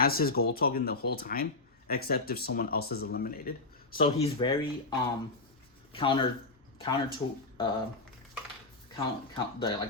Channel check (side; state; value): right; quieter; 3.5 dB